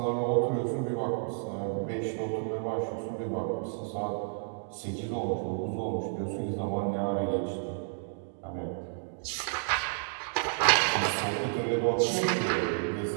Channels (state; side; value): silent; left; digital silence